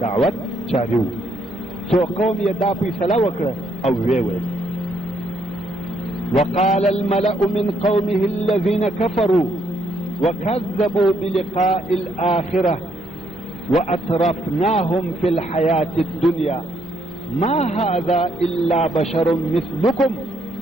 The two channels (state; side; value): normal; both; correlation 0.73